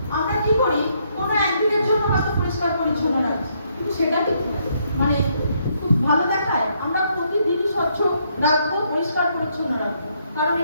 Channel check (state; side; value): inverted; both; correlation -0.73